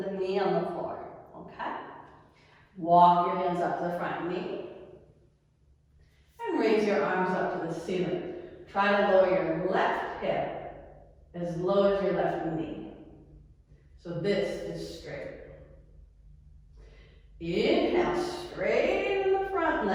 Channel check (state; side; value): identical; both; correlation 1.00